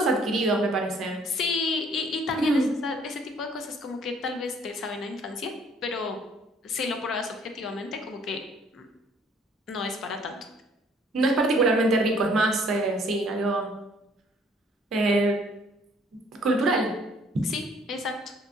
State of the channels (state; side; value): normal; both; correlation 0.60